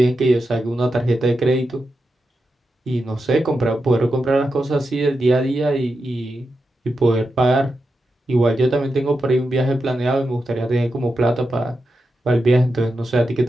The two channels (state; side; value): normal; both; correlation 0.88